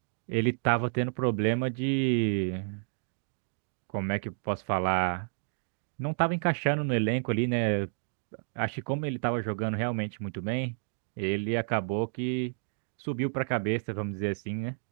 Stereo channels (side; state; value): left; silent; digital silence